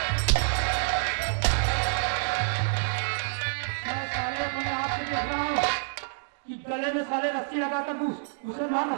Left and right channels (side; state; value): left; silent; digital silence